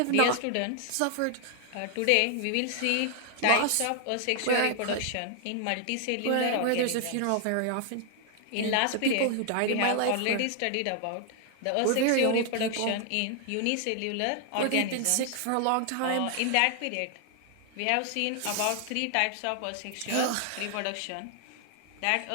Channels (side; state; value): both; different; correlation 0.00